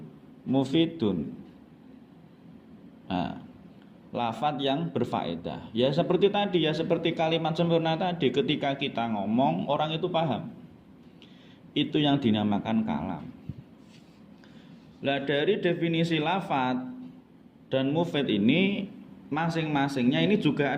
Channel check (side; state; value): both; identical; correlation 1.00